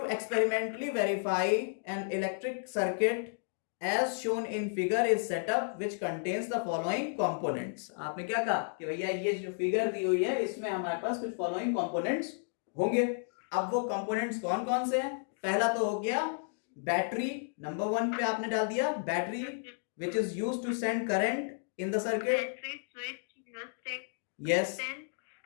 experimentally verify an electric circuit as shown in figure is set up which contains the following components। आपने क्या कहा कि भैया ये जो फिगर दी हुई है इसमें हमारे पास कुछ फॉलोइंग कंपोनेंट्स होंगे। अब वो कंपोनेंट्स कौन कौन से हैं? पहला तो हो गया बैटरी, नंबर 1 पे आपने डाल दिया battery which is used to send current in the circuit। Battery, switch, rheostat, yes,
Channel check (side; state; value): right; silent; digital silence